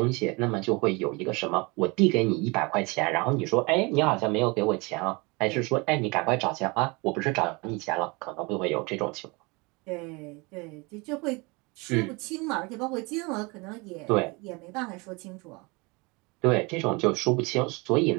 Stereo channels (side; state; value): left; quieter; 27.2 dB